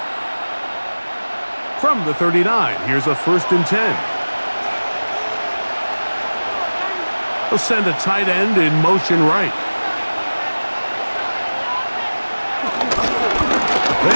From the 39, here's a 1st and 10. They'll send a tight end in motion right.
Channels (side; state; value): both; inverted; correlation -1.00